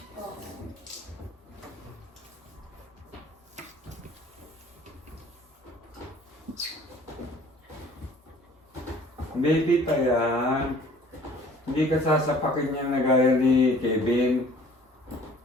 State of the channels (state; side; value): normal; both; correlation 0.52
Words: Baby pa yan. Hindi ka sasapakin niya na gaya ni Kevin.